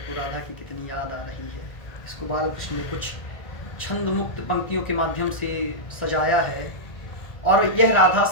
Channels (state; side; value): late; right; 1.9 ms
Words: राधा की कितनी याद आ रही है। इसको बाल कृष्ण ने कुछ छंद मुक्त पंक्तियों के माध्यम से सजाया है। और यह राधा